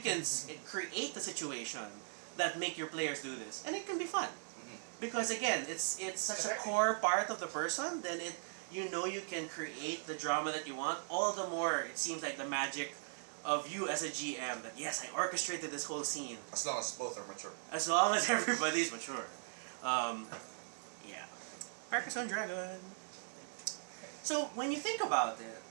create the situation that make your players do this, and it can be fun. Because again, it's such a core part of the person. Then you can create the drama that you want. All the more it seems like the magic of you as a GM. That yes, I orchestrated this whole scene. As long as both are mature. As long as everybody's mature. Yeah. Carcassonne Dragon. So when you think about it,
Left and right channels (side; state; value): left; silent; digital silence